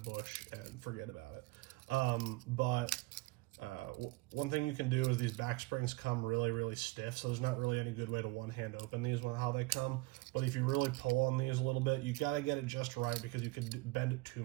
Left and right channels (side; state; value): left; quieter; 21.8 dB